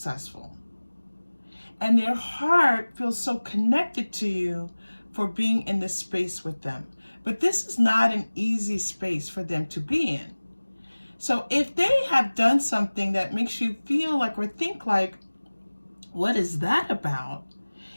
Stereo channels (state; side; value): inverted; both; correlation -1.00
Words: And their heart feels so connected to you for being in this space with them. But this is not an easy space for them to be in. So if they have done something that makes you feel like or think like, what is that about?